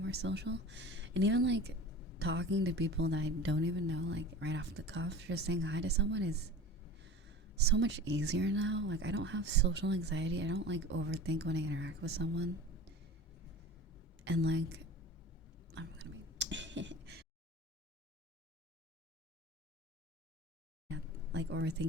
social. And even talking to people that I don't even know, like right off the cuff, just saying hi to someone is so much easier now. Like, I don't have social anxiety. I don't like overthink when I interact with someone. And like, I'm gonna be like,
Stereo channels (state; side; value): normal; both; correlation 0.36